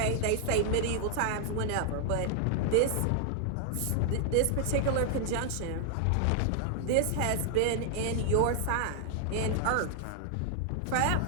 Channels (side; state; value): both; different; correlation 0.00